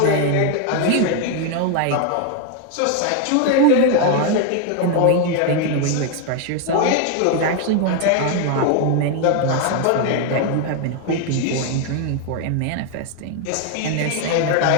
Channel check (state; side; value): different; both; correlation 0.01